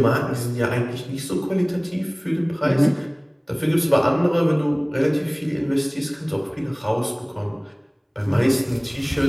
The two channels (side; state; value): both; identical; correlation 1.00